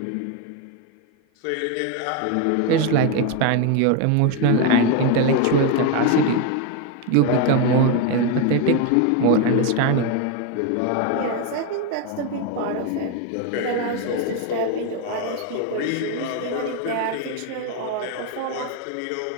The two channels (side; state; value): both; different; correlation 0.02